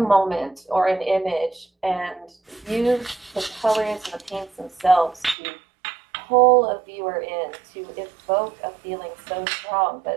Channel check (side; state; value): left; drops out; at 5.4 s